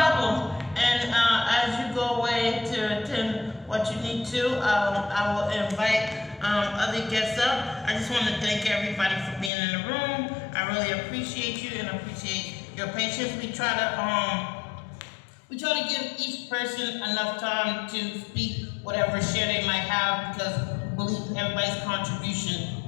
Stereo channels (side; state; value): right; drops out; at 9.5 s